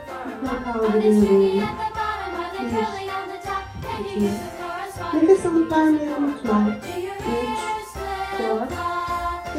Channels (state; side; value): identical; both; correlation 1.00